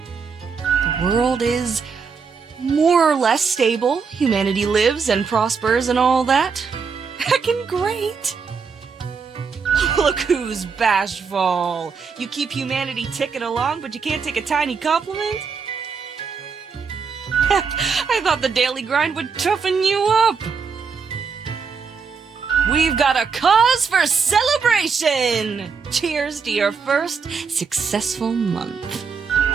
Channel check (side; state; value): left; quieter; 5.6 dB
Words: world is more or less stable. Humanity lives and prospers and all that. Heckin' great. Look who's bashful. You keep humanity ticking along, but you can't take a tiny compliment? Heck, I thought the daily grind would toughen you up. We've got a cause for celebration! Cheers to your first successful month.